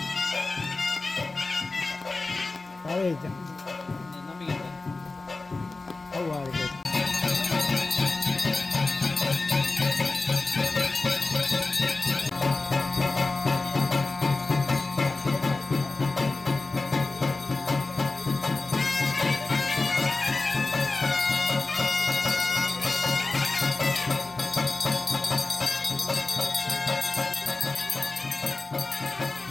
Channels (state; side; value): quieter; right; 3.5 dB